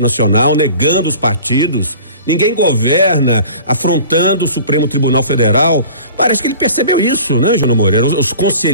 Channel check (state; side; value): inverted; both; correlation -0.43